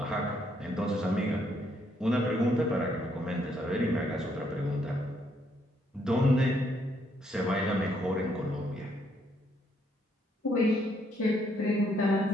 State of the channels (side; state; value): both; normal; correlation 0.72